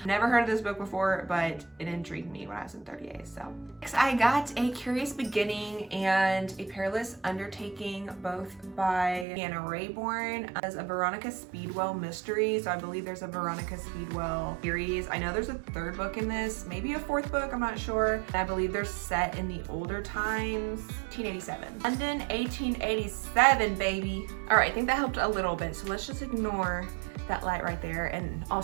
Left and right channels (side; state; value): left; drops out; at 9.2 s